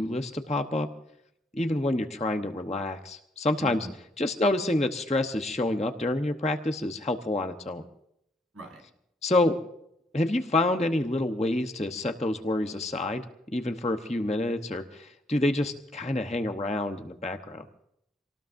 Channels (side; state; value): both; normal; correlation 0.70